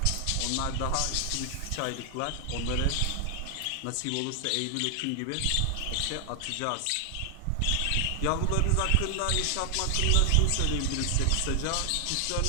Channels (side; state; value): both; different; correlation 0.00